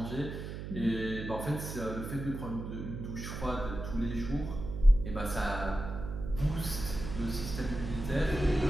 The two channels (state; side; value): noise; right; hum, 7 dB below the sound